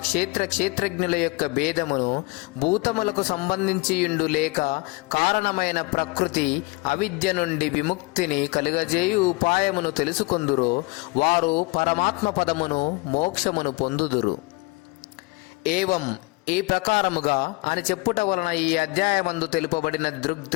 క్షేత్రజ్ఞుల యొక్క భేదమును, భూతములకు సంబంధించియుండు లేక కారణమైన ప్రకృతి అవిద్య నుండి విముక్తిని కలుగజేయు ఉపాయమును తెలుసుకొందురో వారు పరమాత్మ పదమును మోక్షమును పొందుదురు. ఏవం ఈ ప్రకారముగా అని చెప్పుట వలన ఈ అధ్యాయమందు తెలుపబడిన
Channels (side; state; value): right; quieter; 25.3 dB